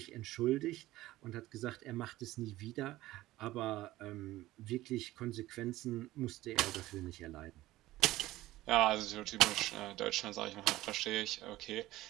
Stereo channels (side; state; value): left; quieter; 16.6 dB